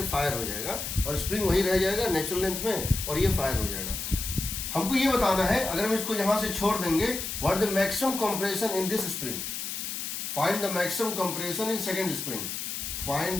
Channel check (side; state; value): left; noise; hiss, 5 dB below the sound